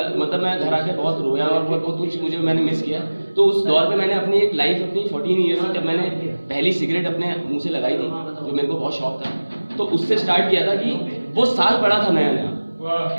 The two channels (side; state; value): both; inverted; correlation -1.00